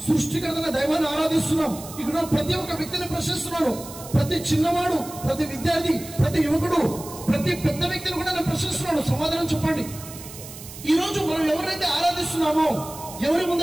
సృష్టికర్తన దైవాన్ని ఆరాధిస్తున్నాం. ఇక్కడ ప్రతి ఒక్క వ్యక్తిని ప్రశ్నిస్తున్నాను. ప్రతి చిన్నవాడు, ప్రతి విద్యార్థి, ప్రతి యువకుడు, ప్రతి పెద్ద వ్యక్తిని కూడా నేను ప్రశ్నిస్తున్నాను. సమాధానం చెప్పండి. ఈరోజు మనం ఎవరైతే ఆరాధిస్తున్నామో, ఎవరి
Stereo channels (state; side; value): noise; right; hiss, 14 dB below the sound